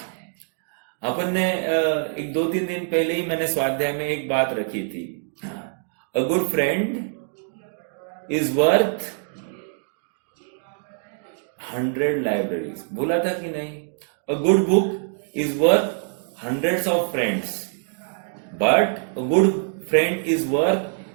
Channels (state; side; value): silent; left; digital silence